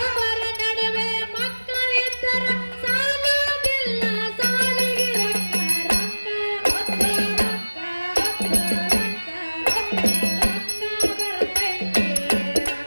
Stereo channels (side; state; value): both; inverted; correlation -1.00